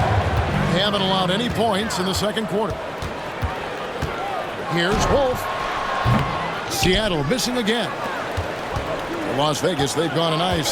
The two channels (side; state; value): both; identical; correlation 1.00